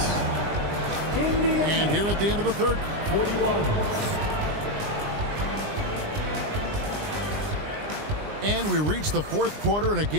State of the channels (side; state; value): left; late; 20 ms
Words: And here at the end of the third. And we reach the fourth quarter in a